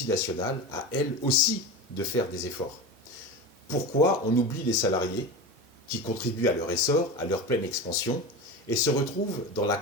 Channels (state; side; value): normal; both; correlation 0.25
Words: à elles aussi, de faire des efforts? Pourquoi on oublie les salariés qui contribuent à leur essor, à leur pleine expansion, et se retrouvent dans la